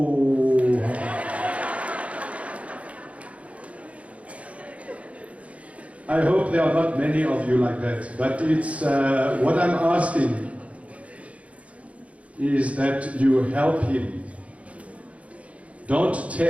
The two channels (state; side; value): late; left; 0.065 ms